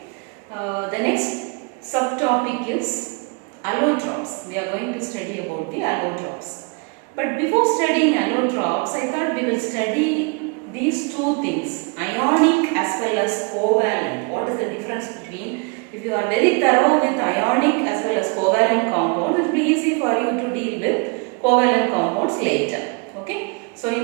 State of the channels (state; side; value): quieter; left; 32.5 dB